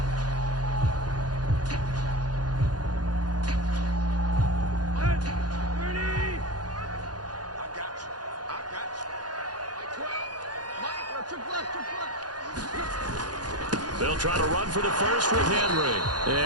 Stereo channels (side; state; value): left; late; 0.69 ms